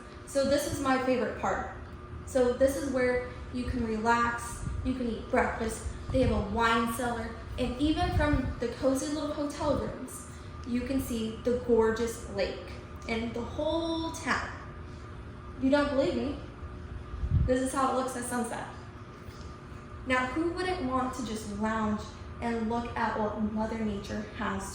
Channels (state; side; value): identical; both; correlation 1.00